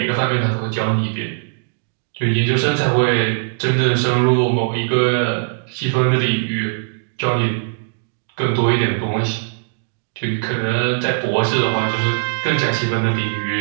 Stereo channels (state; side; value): silent; left; digital silence